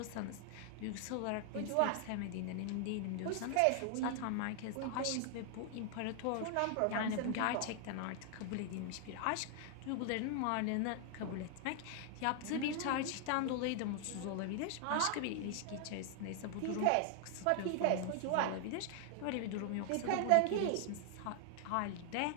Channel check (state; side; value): different; both; correlation 0.00